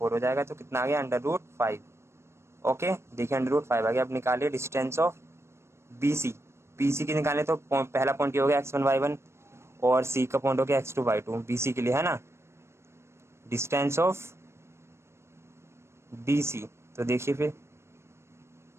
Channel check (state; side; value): late; left; 0.13 ms